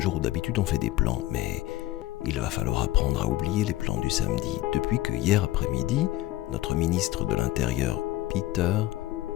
jour où d'habitude on fait des plans, mais il va falloir apprendre à oublier les plans du samedi, depuis que hier après-midi, notre ministre de l'Intérieur, Peter,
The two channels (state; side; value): quieter; right; 16.5 dB